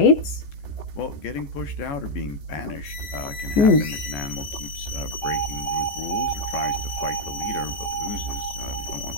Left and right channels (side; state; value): right; late; 14 ms